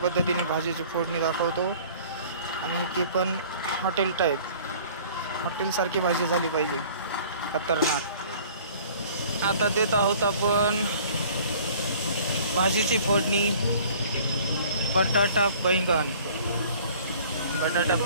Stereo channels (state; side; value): inverted; both; correlation -0.51